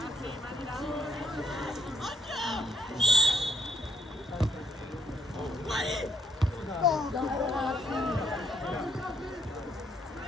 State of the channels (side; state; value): both; normal; correlation 0.71